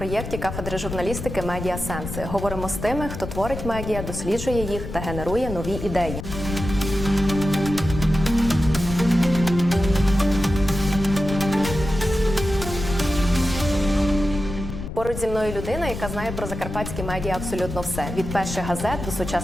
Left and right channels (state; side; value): noise; left; rumble, 7 dB below the sound